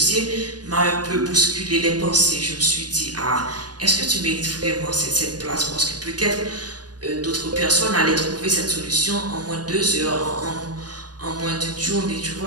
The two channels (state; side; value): late; left; 0.69 ms